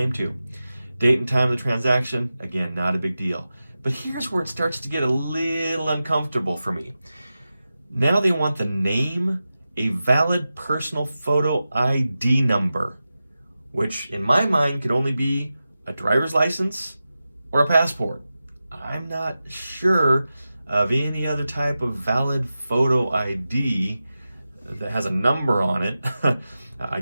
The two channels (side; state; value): both; inverted; correlation -0.93